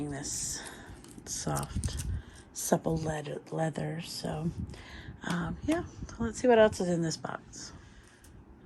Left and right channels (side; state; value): both; identical; correlation 1.00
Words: this soft, supple leather. So yeah, let's see what else is in this box.